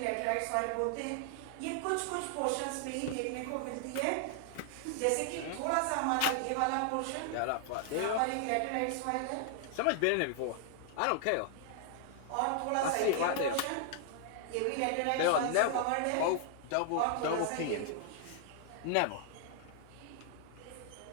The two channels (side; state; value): both; different; correlation 0.00